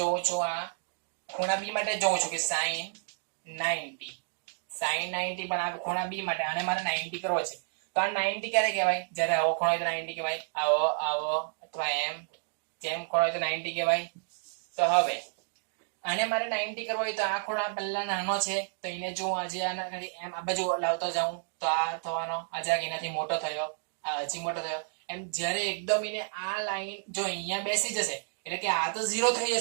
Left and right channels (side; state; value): left; silent; digital silence